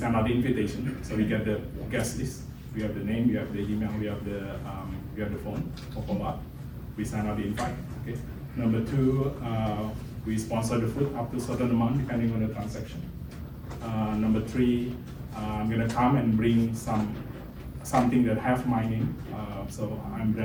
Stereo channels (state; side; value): identical; both; correlation 1.00